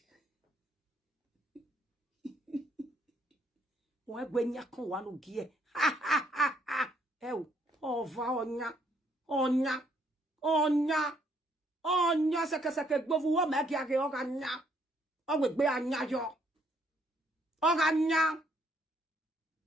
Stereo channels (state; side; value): normal; both; correlation 0.69